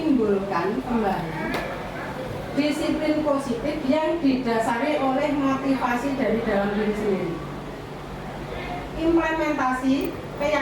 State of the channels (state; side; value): identical; both; correlation 1.00